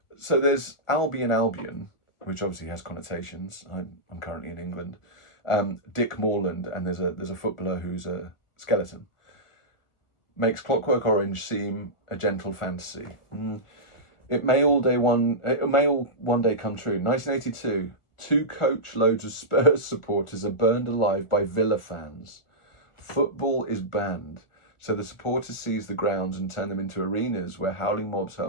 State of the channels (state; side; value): late; right; 1.4 ms